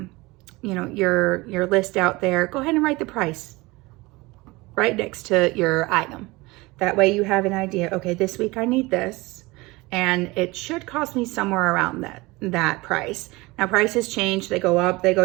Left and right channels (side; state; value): left; quieter; 22.5 dB